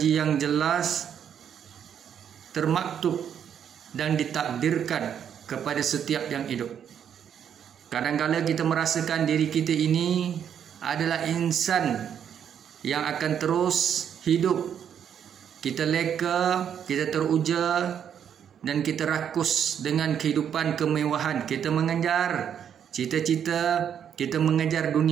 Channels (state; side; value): quieter; left; 8.6 dB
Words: yang jelas, termaktub dan ditakdirkan kepada setiap yang hidup. Kadang-kadang kita merasakan diri kita ini adalah insan yang akan terus hidup. Kita leka, kita teruja, dan kita rakus dengan kehidupan kemewahan. Kita mengejar cita-cita, kita mengejar